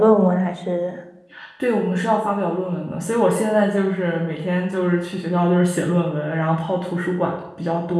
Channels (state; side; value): identical; both; correlation 1.00